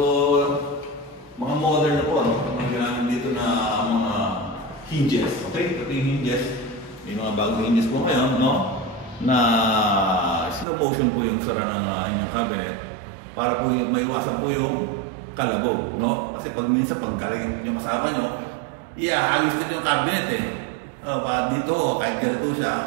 mga modern na po, no? Ang ginamit dito na mga hinges. Okay? Ito yung hinges. May mga bagong hinges po ngayon, no? Na slow motion po yung sara ng inyong cabinet para po maiwasan po yung kalabog, no? Kasi pag minsan pag galing yung kasama nyo, halos din yung cabinet eh. Dito, kahit ganito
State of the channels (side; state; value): left; drops out; at 10.7 s